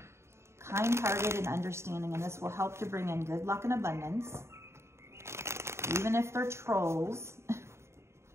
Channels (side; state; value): left; late; 0.13 ms